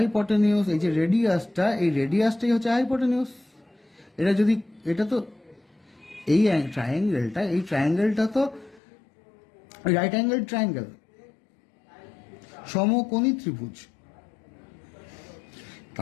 এই যে রেডিয়াসটাই হচ্ছে হাইপোটেনিউস। এটা তো এই ট্রায়াঙ্গেলটা তো রাইট অ্যাঙ্গেল ট্রায়াঙ্গেল, সমকোণী ত্রিভুজ।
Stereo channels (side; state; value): right; drops out; at 8.8 s